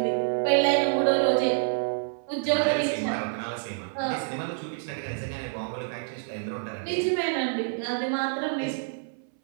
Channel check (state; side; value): silent; left; 60 dB below the other